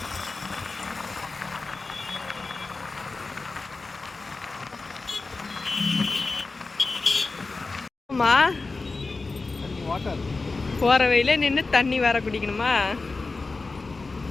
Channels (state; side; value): quieter; right; 3.7 dB